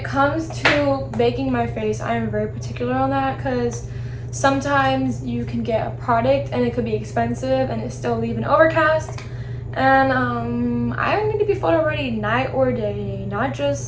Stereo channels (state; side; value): identical; both; correlation 1.00